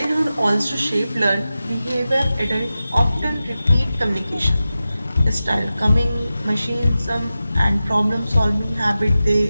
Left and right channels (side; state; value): both; inverted; correlation -0.94